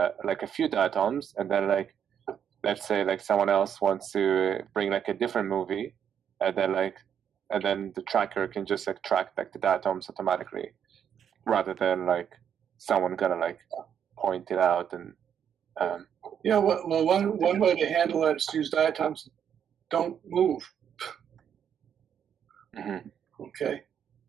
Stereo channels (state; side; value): quieter; left; 8.5 dB